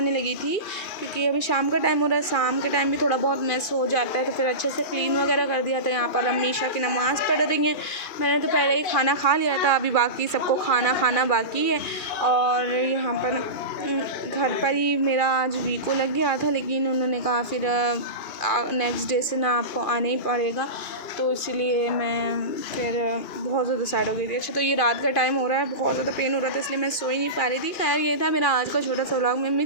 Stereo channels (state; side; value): late; right; 2.4 ms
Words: लगी थी, क्योंकि अभी शाम का टाइम हो रहा है, शाम के टाइम भी थोड़ा बहुत मैस हो जाता है, तो फिर अच्छे से क्लीन वगैरह कर दिया था। यहाँ पर अम्मी ईशा की नमाज़ पढ़ रही हैं। मैंने तो पहले ही खाना खा लिया था, अभी बाकी सबको खाना बाकी है। और यहाँ पर घर पर ही मेरा आज वीको लग गया था, लेकिन उन्होंने कहा फिर नेक्स्ट डे से ना आपको आना ही पड़ेगा, तो इसीलिए मैं फिर बहुत ज़्यादा सैड हो गई थी। अच्छा, तो ये रात का टाइम हो रहा है, बहुत ज़्यादा पेन हो रहा था, इसलिए मैं सो ही नहीं पा रही थी। खैर, ये था मेरा आज का छोटा सा व्लॉग। मैं